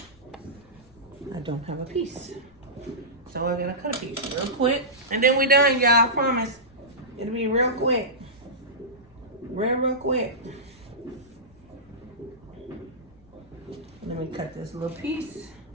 I don't have a piece. So we're gonna cut a piece real quick. And then we done, y'all, I promise. It'll be real quick. Real quick. Let me cut this little piece.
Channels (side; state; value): left; noise; rumble, 28 dB below the sound